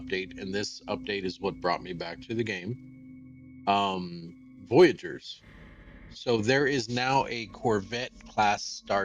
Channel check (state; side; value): identical; both; correlation 1.00